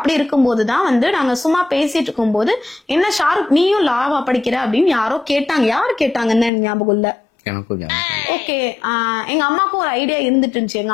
இருக்கும்போதுதான் வந்து நாங்க சும்மா பேசிட்டு இருக்கும்போது, என்ன ஷாருக் நீயும் லாவா படிக்கிற அப்படின்னு யாரோ கேட்டாங்க. யாரு கேட்டாங்கன்னு ஞாபகம் இல்ல. ஓகே, எங்க அம்மாக்கும் ஒரு ஐடியா இருந்துட்டு இருந்துச்சு. எங்க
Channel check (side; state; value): right; drops out; at 6.5 s